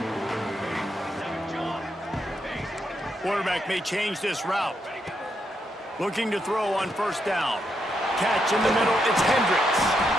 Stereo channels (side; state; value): both; normal; correlation 0.80